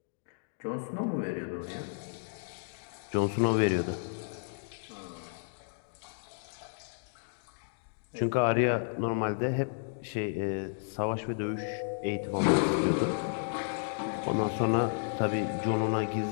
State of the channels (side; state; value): right; silent; digital silence